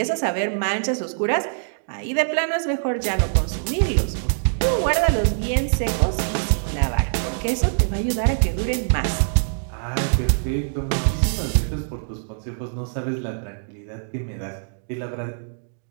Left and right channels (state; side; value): silent; left; digital silence